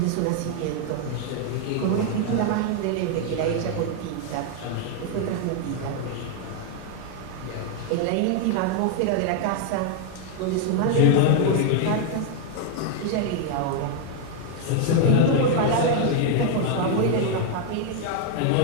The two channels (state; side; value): different; both; correlation 0.00